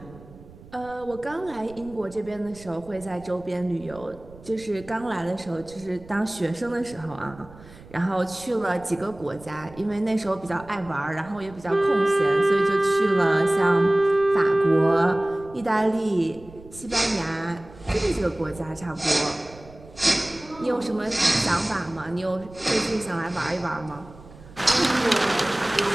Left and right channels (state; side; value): noise; right; rumble, 20 dB below the sound